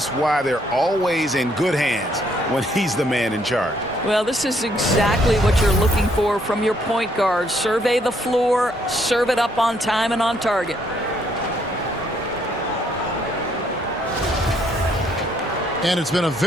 why they're always in good hands when he's the man in charge. Well, this is exactly what you're looking for from your point guard. Survey the floor, serve it up on time and on target. And it's been a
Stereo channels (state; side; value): normal; both; correlation 0.69